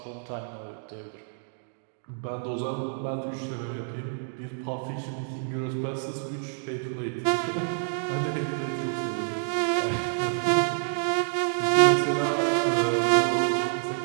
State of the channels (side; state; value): left; silent; digital silence